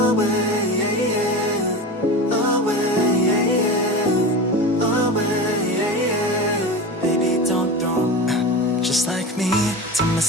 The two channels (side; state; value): both; normal; correlation 0.28